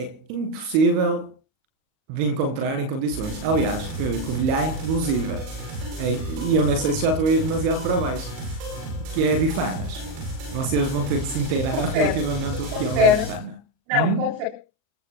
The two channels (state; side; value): late; left; 38 ms